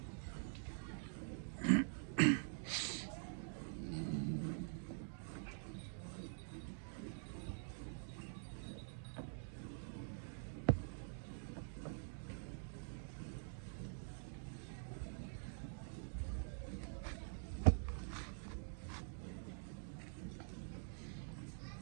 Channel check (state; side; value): silent; left; digital silence